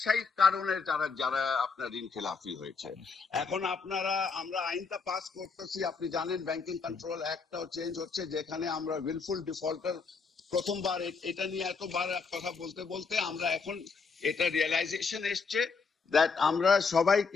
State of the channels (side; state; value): right; quieter; 4.9 dB